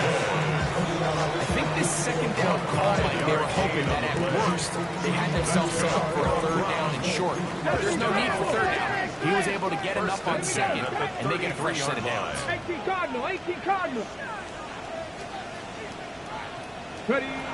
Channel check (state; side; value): identical; both; correlation 1.00